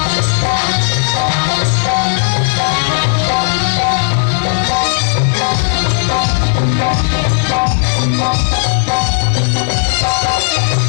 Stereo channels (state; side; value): silent; right; digital silence